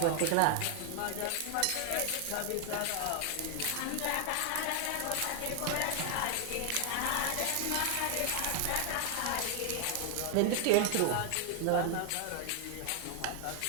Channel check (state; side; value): different; both; correlation 0.00